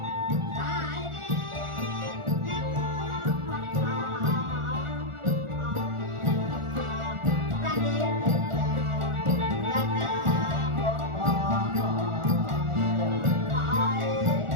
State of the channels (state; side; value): late; left; 1.4 ms